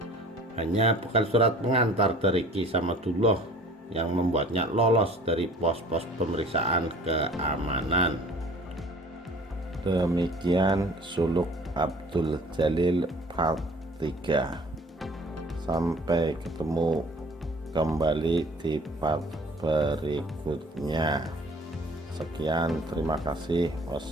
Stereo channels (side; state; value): both; normal; correlation 0.49